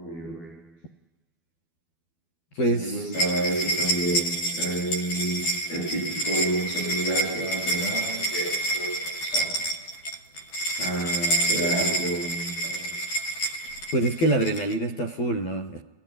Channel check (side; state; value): right; late; 12 ms